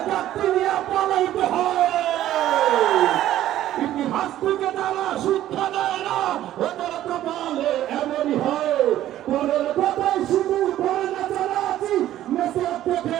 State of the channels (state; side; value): quieter; left; 13.1 dB